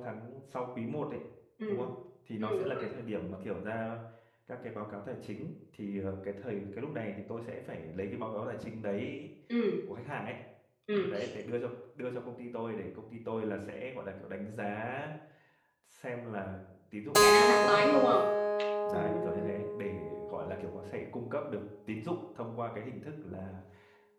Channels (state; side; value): identical; both; correlation 1.00